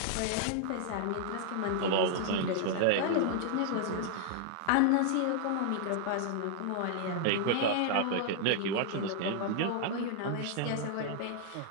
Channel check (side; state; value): both; different; correlation 0.00